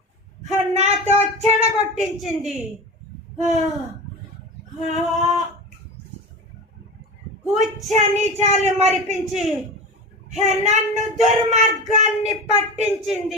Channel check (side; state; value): both; normal; correlation 0.28